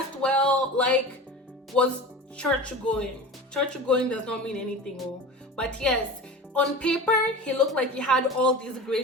well, was church going. Church going does not mean anything, but yes, on paper he looked like he had all these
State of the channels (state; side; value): normal; both; correlation 0.33